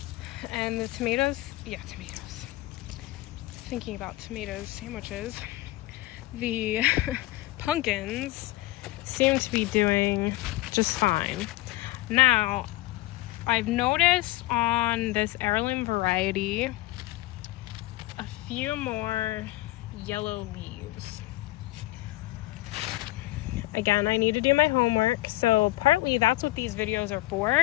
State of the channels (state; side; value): quieter; right; 18.6 dB